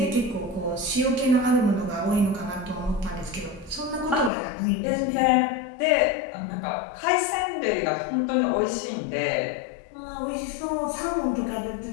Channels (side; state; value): right; drops out; at 4.3 s